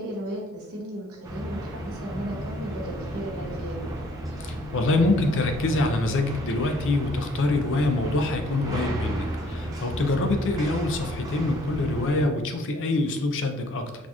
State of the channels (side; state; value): both; normal; correlation 0.62